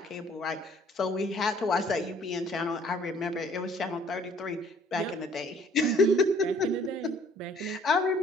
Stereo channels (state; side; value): normal; both; correlation 0.58